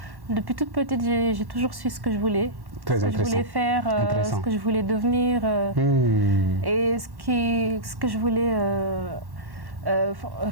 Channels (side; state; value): left; late; 1.1 ms